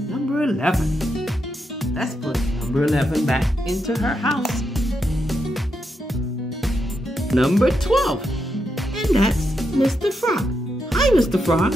Number 11. Let's put number 11 back into her house. Number 12. And that's Mr. Frog. Hi, Mr. Frog.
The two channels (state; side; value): normal; both; correlation 0.83